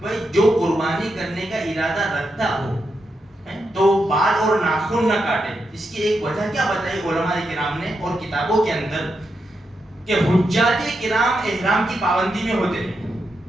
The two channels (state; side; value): normal; both; correlation 0.85